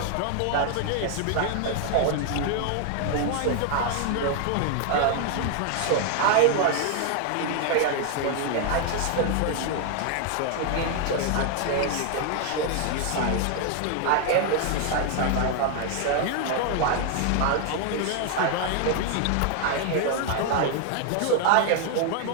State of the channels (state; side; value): different; both; correlation 0.00